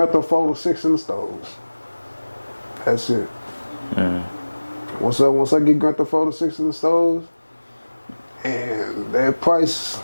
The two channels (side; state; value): both; inverted; correlation -1.00